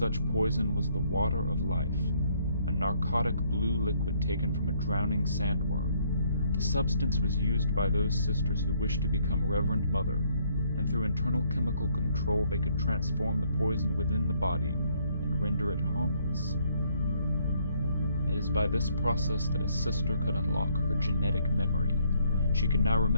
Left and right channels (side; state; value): both; inverted; correlation -0.68